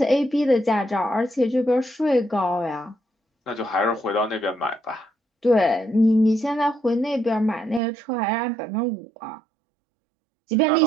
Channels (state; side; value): drops out; left; at 7.8 s